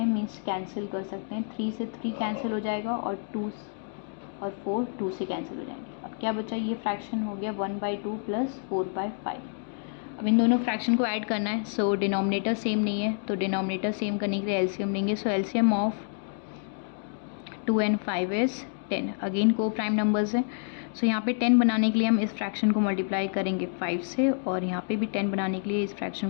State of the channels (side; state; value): right; silent; digital silence